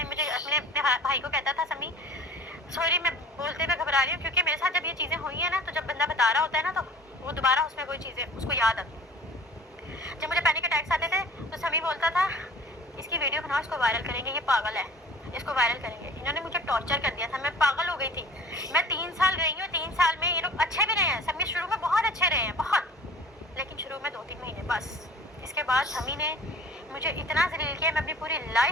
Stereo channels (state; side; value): normal; both; correlation 0.45